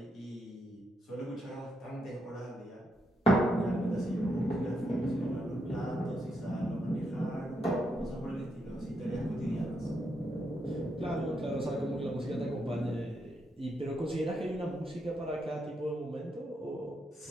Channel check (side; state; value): both; normal; correlation 0.80